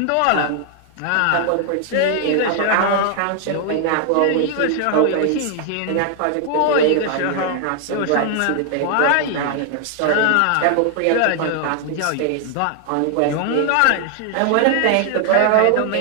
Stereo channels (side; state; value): both; different; correlation 0.00